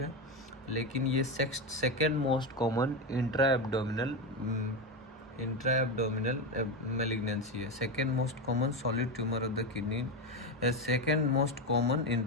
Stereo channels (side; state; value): both; normal; correlation 0.14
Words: है, लेकिन ये second most common intra abdominal malignancy है। Second most common solid tumour of the kidney, second most common